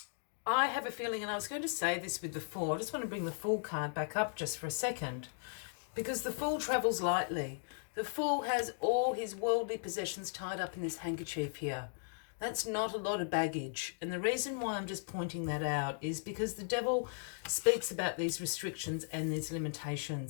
have a feeling, and I was going to say this with the Fool, I just want to bring the Fool card back up just for a second, because the Fool travels lightly. The Fool has all his worldly possessions tied up in this handkerchief here. That's not a lot of baggage. And the reason why I'm just pointing that out is because the Devil speaks about these restrictions and these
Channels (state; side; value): silent; right; digital silence